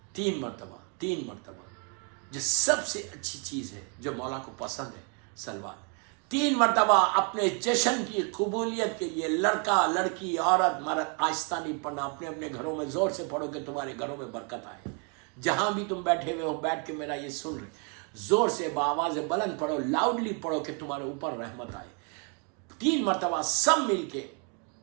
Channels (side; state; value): left; quieter; 37.4 dB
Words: 3 مرتبہ جو سب سے اچھی چیز ہے، جو مولا کو پسند ہے، سلوات 3 مرتبہ اپنے جشن کی قبولیت کے لیے، لڑکا لڑکی عورت مرد، آہستہ نہیں پڑھنا، اپنے اپنے گھروں میں زور سے پڑھو کہ تمہارے گھروں میں برکت آئے۔ جہاں بھی تم بیٹھے ہوئے ہو، بیٹھ کے میرا یہ سن رہے، زور سے بآواز بلند پڑھو، لاؤڈلی پڑھو کہ تمہارے اوپر رحمت آئے۔ 3 مرتبہ سب مل کے